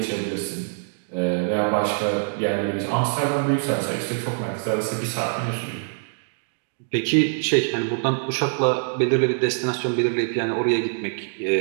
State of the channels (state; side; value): silent; left; digital silence